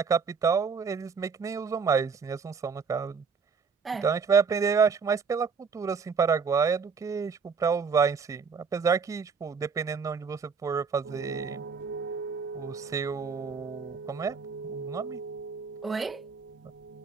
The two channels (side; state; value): left; quieter; 5.5 dB